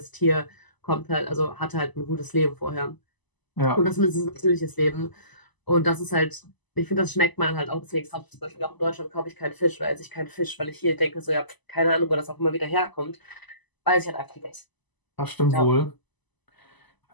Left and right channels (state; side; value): late; right; 1.0 ms